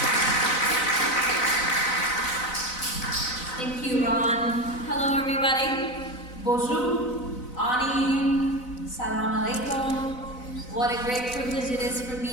Thank you, Ron. Hello, everybody. Bonjour, Ani, Salam Alaikum. What a great privilege it is for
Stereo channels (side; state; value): right; late; 4.0 ms